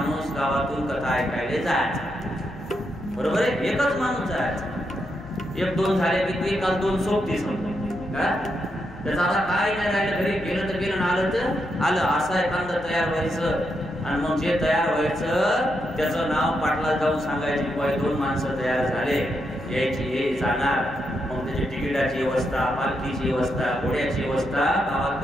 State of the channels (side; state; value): left; noise; hum, 18 dB below the sound